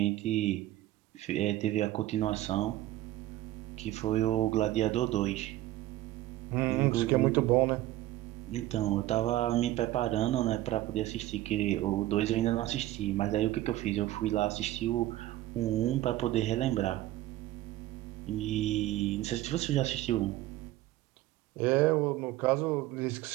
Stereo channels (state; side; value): quieter; left; 15.5 dB